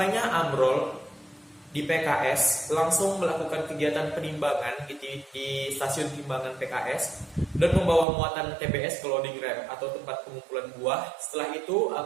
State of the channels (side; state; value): left; drops out; at 8.1 s